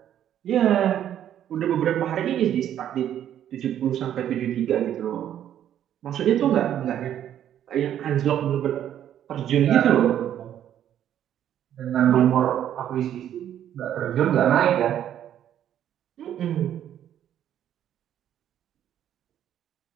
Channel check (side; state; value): left; quieter; 10.6 dB